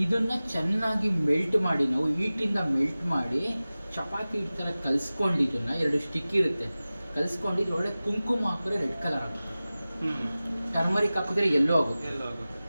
ಇದನ್ನ ಚೆನ್ನಾಗಿ ಮೆಲ್ಟ್ ಮಾಡಿ, ನಾವು ಹೀಟಿಂದ ಮೆಲ್ಟ್ ಮಾಡಿ ಚಪಾತಿ ಈ ಥರ ಕಲಿಸ್ಕೊಂಡು, ಇದನ್ನ 2 ಸ್ಟಿಕ್ ಇರುತ್ತೆ, ಕಲಿಸ್ಕೊಂಡು ಇದ್ರೊಳಗೆ ಕುಂಕುಮ ಹಾಕಿದ್ರೆ ರೆಡ್ ಕಲರ್ ಆಗುತ್ತೆ, ಟರ್ಮರಿಕ್ ಹಾಕಿದ್ರೆ ಯೆಲ್ಲೋ ಆಗುತ್ತೆ,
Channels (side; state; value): both; inverted; correlation -0.97